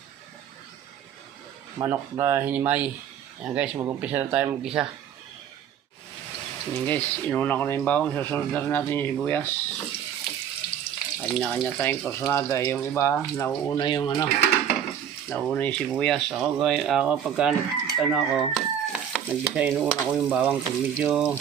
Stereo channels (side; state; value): left; quieter; 9.0 dB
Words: manok na hinimay. Yan guys, mag-umpisa na tayo mag-isa. Yan guys, inuna ko na yung bawang, susunod na rin natin yung sibuyas. Kanya-kanya tayong kursunada. Yung iba, nauuna yung nauna yung sibuyas. Ako pagka nag-isa, inuuna ko yung bawang. Pag medyo